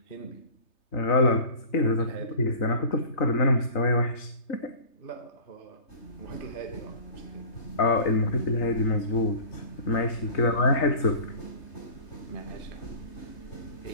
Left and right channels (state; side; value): late; right; 3.3 ms